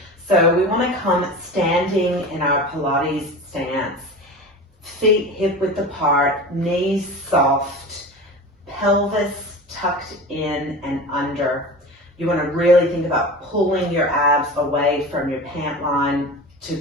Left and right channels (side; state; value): both; normal; correlation 0.32